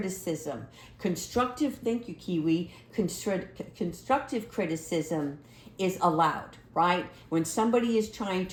Thank you, Kiwi. Constructive criticism is allowed, right? When somebody is trying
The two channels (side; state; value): both; identical; correlation 1.00